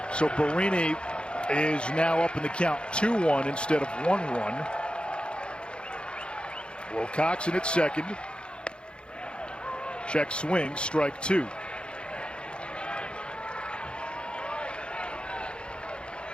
So Barini is now up in the count 2-1 instead of 1-1. Wilcoxon at second. Check swing, strike two.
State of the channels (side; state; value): right; late; 0.055 ms